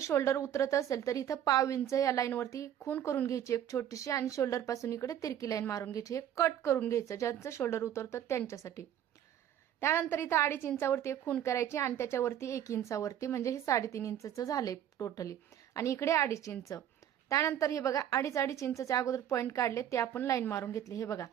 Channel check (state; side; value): quieter; left; 10.5 dB